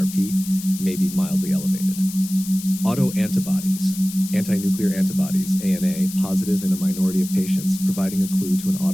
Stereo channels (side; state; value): left; noise; hiss, 12 dB below the sound